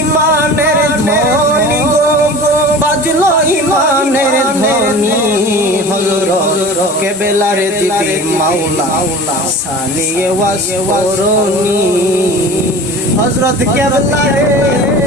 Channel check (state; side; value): normal; both; correlation 0.38